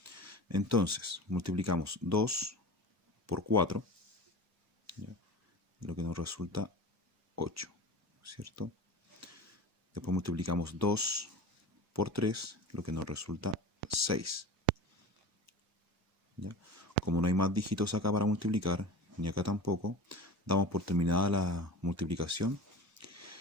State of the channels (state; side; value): normal; both; correlation 0.33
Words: Entonces, multiplicamos 2 por 4, ¿ya? Lo que nos resulta 8, ¿cierto? Después multiplicamos 2 por 3, lo que nos resulta 6. ¿Ya? Como no hay más dígitos acá para multiplicar, ni acá tampoco, damos por terminada la multiplicación